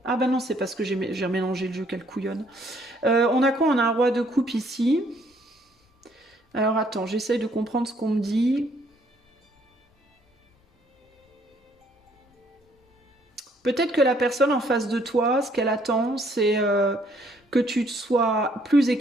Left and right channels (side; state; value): both; normal; correlation 0.66